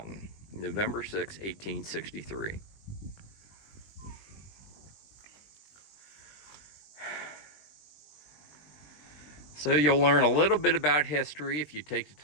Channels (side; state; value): right; late; 20 ms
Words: November 6, 1863. So you'll learn a little bit about history if you take the